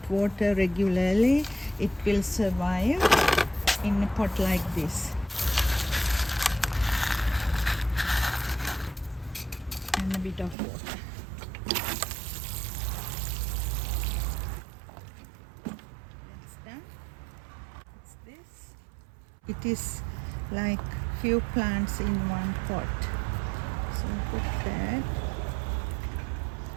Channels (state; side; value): drops out; left; at 10.6 s